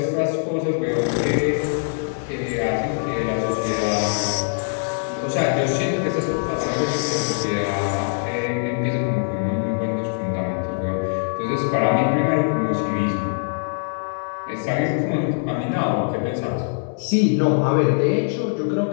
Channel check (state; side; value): silent; right; digital silence